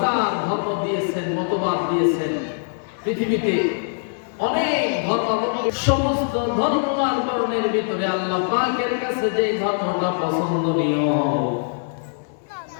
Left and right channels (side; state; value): right; silent; 63 dB below the other